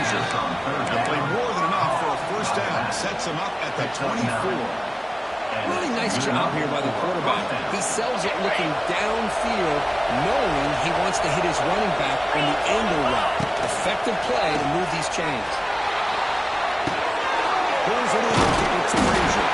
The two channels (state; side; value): identical; both; correlation 1.00